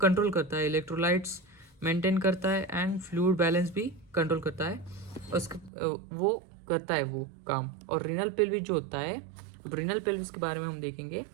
कंट्रोल करता है, इलेक्ट्रोलाइट्स मेंटेन करता है एंड फ्लूइड बैलेंस भी कंट्रोल करता है, वो करता है वो काम. और रीनल पेल्विस जो होता है, अब रीनल पेल्विस के बारे में हम देखेंगे.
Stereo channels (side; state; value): left; drops out; at 5.7 s